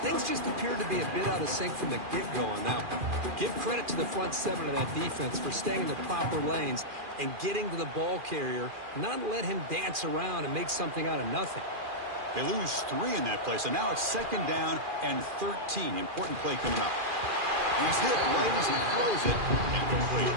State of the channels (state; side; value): late; left; 2.4 ms